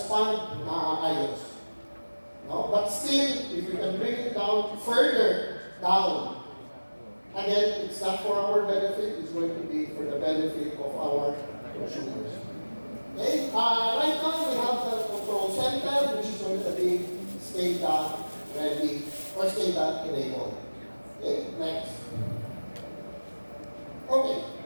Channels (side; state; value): both; inverted; correlation -1.00